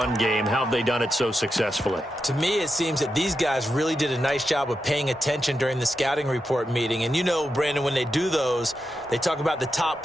game. How have they done it so successfully? To me, it seems that these guys really did a nice job of paying attention during the scouting report meeting. And you know, Brandon, when they do those, they talk about the top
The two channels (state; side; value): normal; both; correlation 0.88